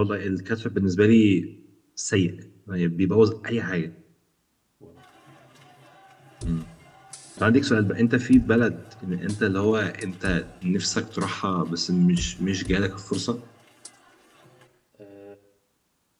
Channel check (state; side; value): identical; both; correlation 1.00